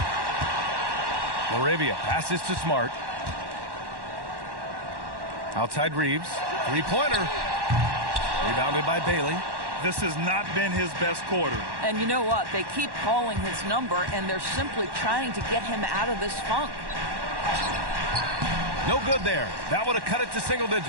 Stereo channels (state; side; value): late; left; 1.1 ms